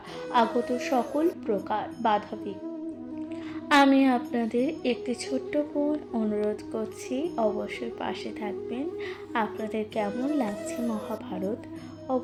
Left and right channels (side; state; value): both; identical; correlation 1.00